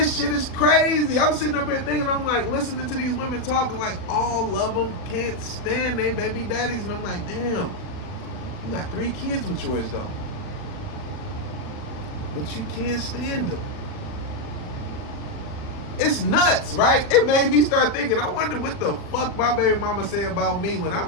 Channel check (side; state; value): right; late; 40 ms